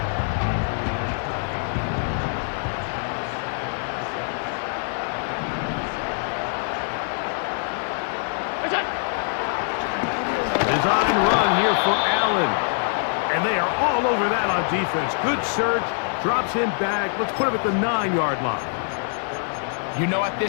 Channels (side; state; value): right; silent; 58 dB below the other